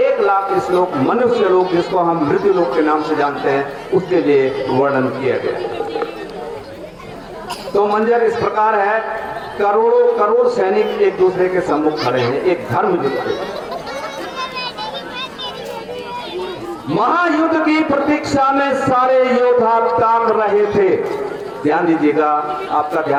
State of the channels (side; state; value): both; identical; correlation 1.00